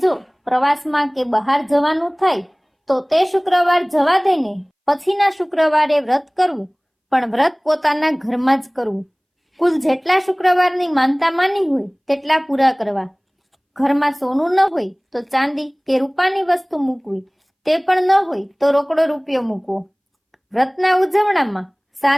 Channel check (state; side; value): identical; both; correlation 1.00